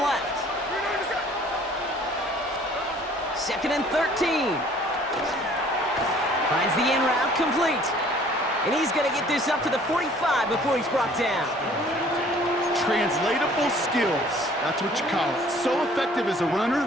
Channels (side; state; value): both; normal; correlation 0.54